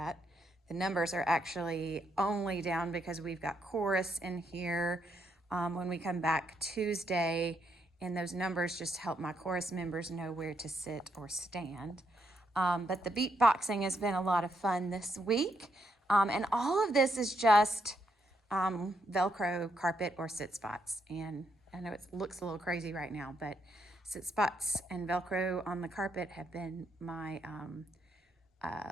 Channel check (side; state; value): both; normal; correlation 0.77